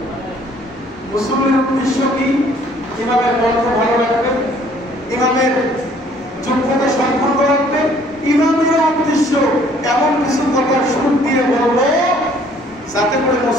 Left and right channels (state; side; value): normal; both; correlation 0.59